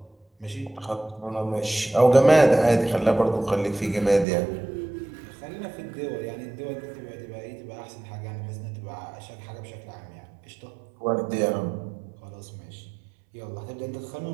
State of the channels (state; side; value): drops out; left; at 4.2 s